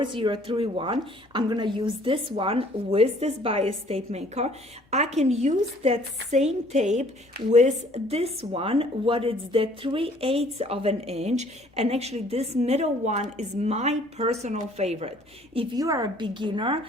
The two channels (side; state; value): both; normal; correlation 0.58